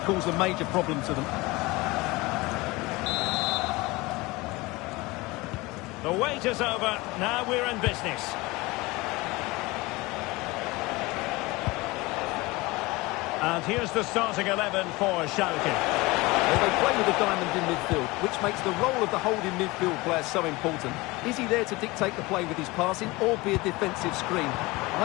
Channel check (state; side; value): quieter; right; 22.4 dB